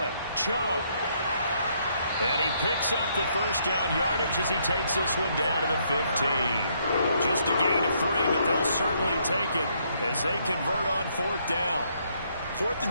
it. Chubb. And he picks up the first down yardage as he takes this one down to the 15. Just a gain of 3, but they'll certainly take it as they convert on fourth down. 4th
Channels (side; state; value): both; inverted; correlation -0.71